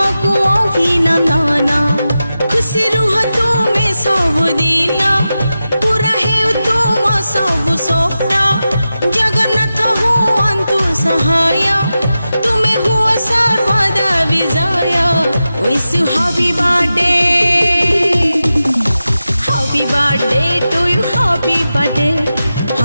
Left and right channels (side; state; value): both; inverted; correlation -0.92